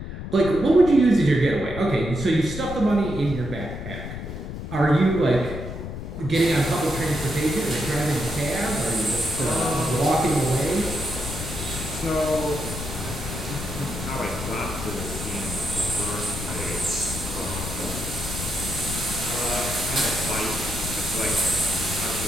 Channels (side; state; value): left; noise; rumble, 7 dB below the sound